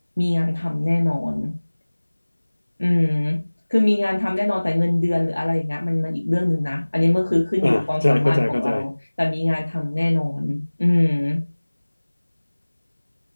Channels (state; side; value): inverted; both; correlation -1.00